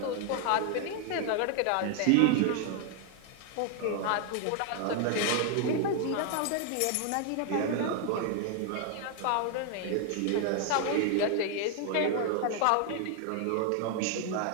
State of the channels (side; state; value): both; different; correlation 0.00